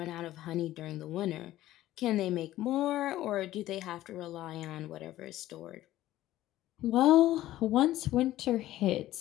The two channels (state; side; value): quieter; right; 14.7 dB